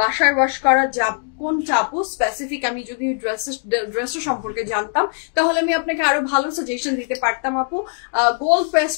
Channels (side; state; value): right; silent; 61 dB below the other